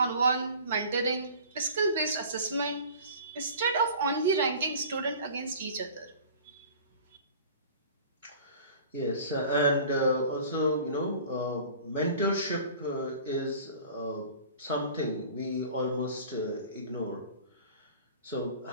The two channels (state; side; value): inverted; both; correlation -0.44